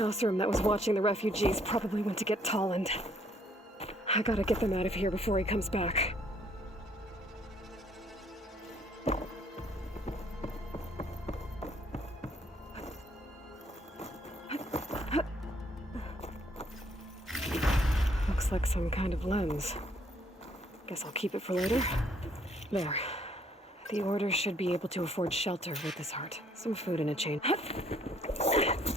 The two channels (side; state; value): both; normal; correlation 0.65